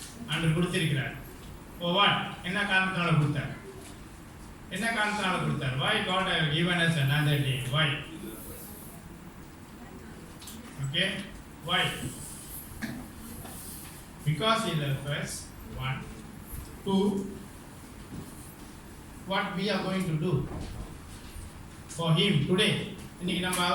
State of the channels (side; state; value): both; identical; correlation 1.00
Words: ஆண்டவர் கொடுத்திருக்கிறார். For what? என்ன காரணத்தால கொடுத்தார்? என்ன காரணத்தால கொடுத்தார்? Why God has given us another day? Why? Okay? Why? Because He loves us. One. Two. What we are going to do for Him today. இன்னைக்கு நம்ம